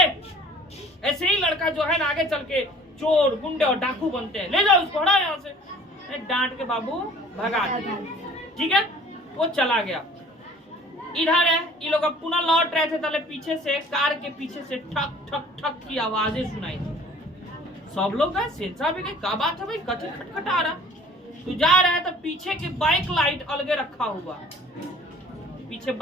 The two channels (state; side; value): normal; both; correlation 0.50